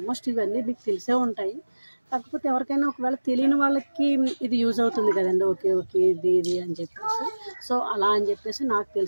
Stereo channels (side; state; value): both; inverted; correlation -1.00